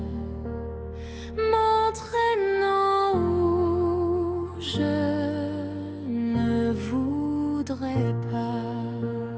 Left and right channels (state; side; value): identical; both; correlation 1.00